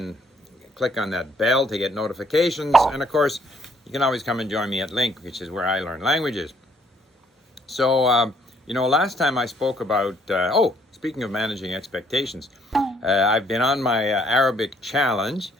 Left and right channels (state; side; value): normal; both; correlation 0.65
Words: click on that bell to get notifications. And of course, you can always come and join me at Link, which is where I learn languages. So, last time I spoke about, speaking of managing expectations, I've been on my Arabic challenge